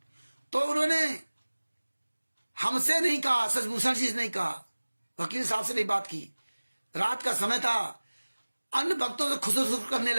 तो उन्होंने हमसे नहीं कहा, सचभूषण जी से नहीं कहा, वकील साहब से नहीं बात की। रात का समय था, अन्य भक्तों से खुशखुश करने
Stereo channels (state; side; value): inverted; both; correlation -1.00